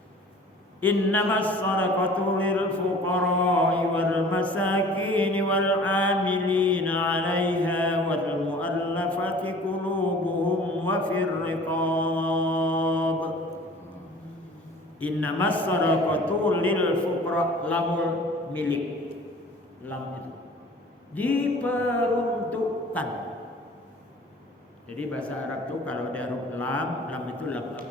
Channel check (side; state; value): both; normal; correlation 0.47